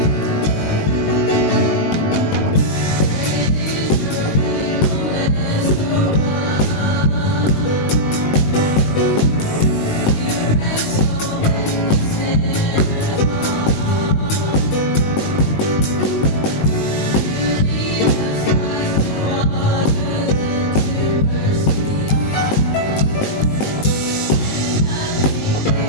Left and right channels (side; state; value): right; late; 19 ms